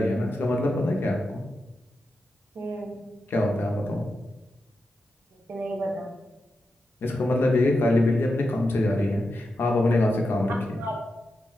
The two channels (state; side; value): normal; both; correlation 0.89